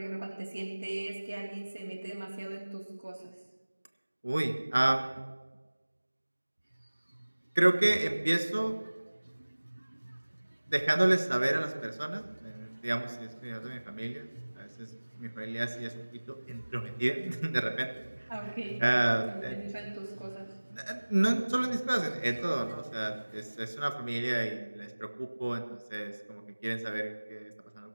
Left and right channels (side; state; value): both; inverted; correlation -1.00